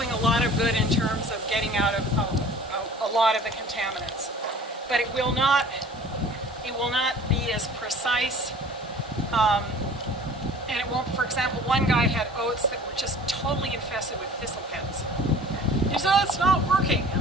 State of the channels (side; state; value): both; normal; correlation 0.46